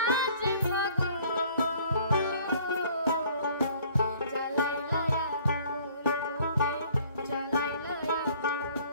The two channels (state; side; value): inverted; both; correlation -0.56